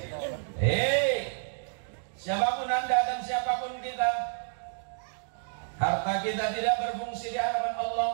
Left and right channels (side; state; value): left; silent; digital silence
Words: Siapapun Anda dan siapapun kita, harta kita tidak berfungsi di hadapan Allah.